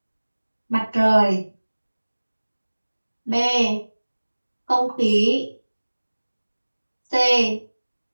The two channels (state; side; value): inverted; both; correlation -1.00